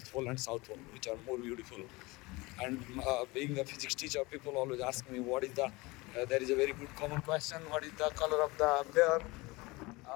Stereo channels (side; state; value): right; quieter; 23.3 dB